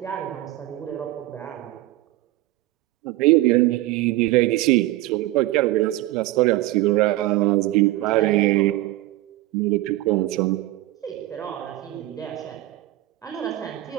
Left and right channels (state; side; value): quieter; left; 17.0 dB